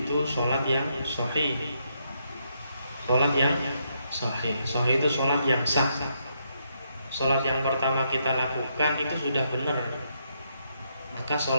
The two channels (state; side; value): inverted; both; correlation -0.77